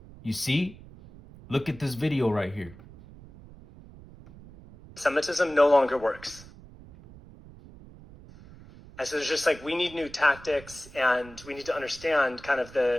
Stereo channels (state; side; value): noise; right; rumble, 20 dB below the sound